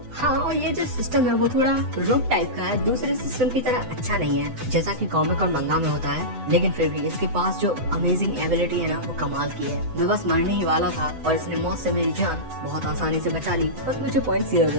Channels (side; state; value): left; late; 7.9 ms